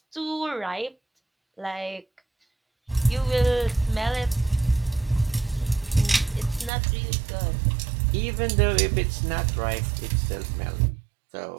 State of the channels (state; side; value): drops out; left; at 6.7 s